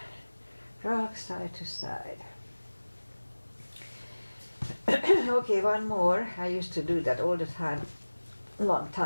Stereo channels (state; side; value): inverted; both; correlation -1.00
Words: Rock side to side. Okay, one more. I used to do that all the time, long